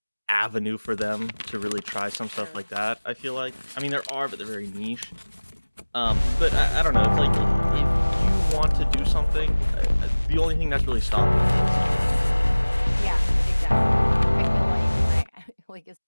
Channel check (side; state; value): both; inverted; correlation -1.00